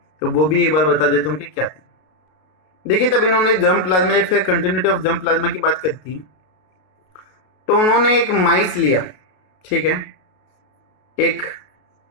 वो भी एक बार बता देता हूँ कि क्या थी। देखिए, तब इन्होंने जर्म प्लाज्मा या फिर कंटिन्यूटी ऑफ जर्म प्लाज्मा की बात करी थी, तो उन्होंने एक माइस लिया, ठीक है, एक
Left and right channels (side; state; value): right; late; 33 ms